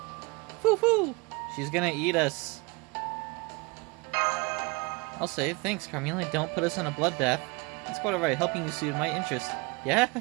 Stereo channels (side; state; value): left; quieter; 27.3 dB